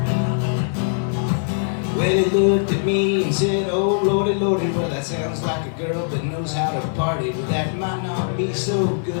Well, he looked at me and said, oh lordy, lordy, well that sounds like a girl that knows how to party, but that might not be so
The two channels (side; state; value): right; silent; digital silence